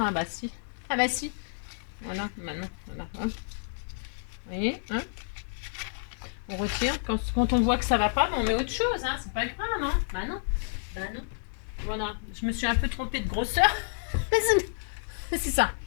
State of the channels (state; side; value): silent; right; digital silence